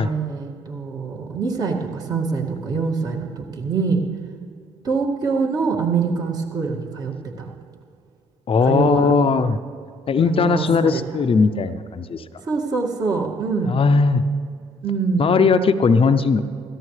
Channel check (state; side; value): normal; both; correlation 0.64